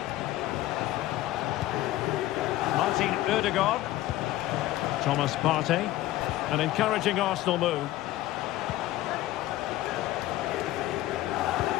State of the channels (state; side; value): quieter; right; 15.7 dB